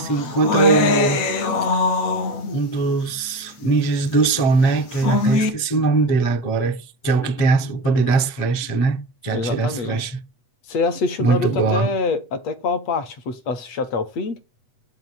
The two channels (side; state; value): right; late; 8.1 ms